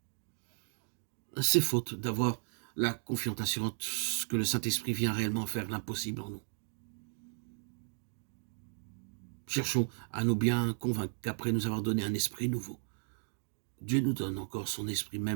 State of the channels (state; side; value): silent; left; digital silence